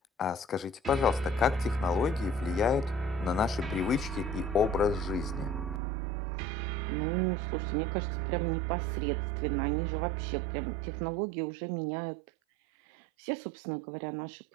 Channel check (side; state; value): left; drops out; at 5.8 s